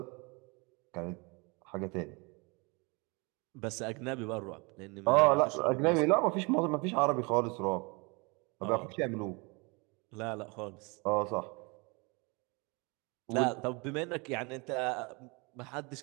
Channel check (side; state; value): left; quieter; 29.1 dB